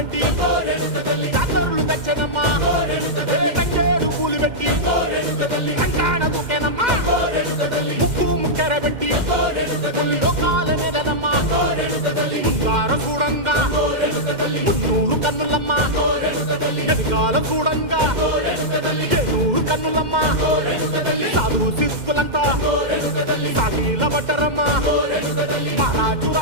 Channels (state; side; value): late; left; 2.1 ms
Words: జాతరులు తెచ్చనమ్మా తంగేడు పూలు పెట్టి రంగాణ దూకేనమ్మా ముక్కు ముక్కెర పెట్టి ముల్లోకాల నెలనమ్మా ముందార చూడంగా మున్నూరు కన్నులమ్మా వెనకాల చూడంగా ఏనూరు కన్నులమ్మా సాధు సిద్ధులంతా సాగిల బట్టరమ్మా మహారాజు